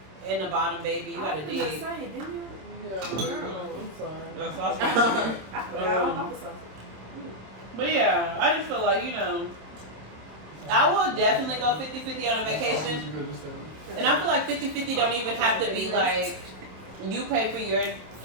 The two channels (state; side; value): late; left; 27 ms